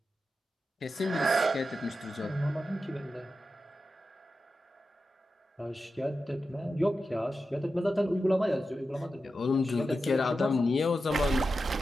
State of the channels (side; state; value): both; normal; correlation 0.91